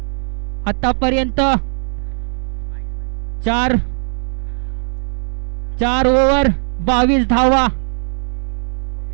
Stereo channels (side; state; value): left; silent; digital silence